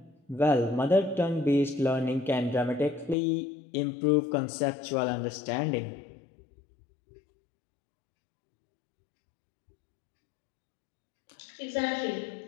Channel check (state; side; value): drops out; right; at 3.2 s